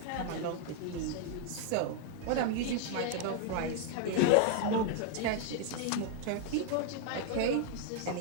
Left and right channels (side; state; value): both; different; correlation 0.00